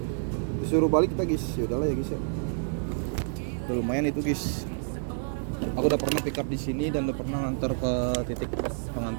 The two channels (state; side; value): silent; left; 59 dB below the other